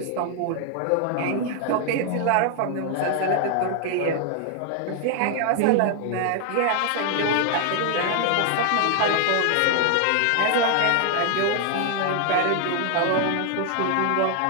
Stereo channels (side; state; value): both; different; correlation 0.00